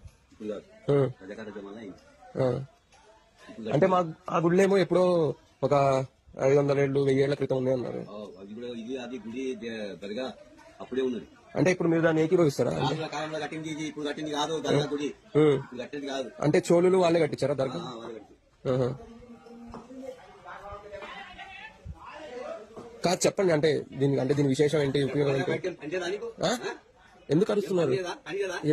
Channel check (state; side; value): identical; both; correlation 1.00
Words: అంటే మా ఆ గుడిలో ఏమో ఎప్పుడో ఒక 500 ఏళ్ళు 1000 ఏళ్ల క్రితం ఉంది అన్నారు. అప్పుడే ఉన్నది. అంటే ఇప్పుడు మీరు దాన్ని ఏకీభవిస్తారా? కాలంలో కట్టింది ఇప్పుడు కట్టింది కాదు. గుడి కట్టింది కాదు. అంటే చోళులు వాళ్ళే కట్టించారా దర్గా? కాదు చెప్పండి. అంటే దీని విశేషం ఏంటి, ఉపయోగం ఏంటి? ఎందుకు అరుస్తున్నారు?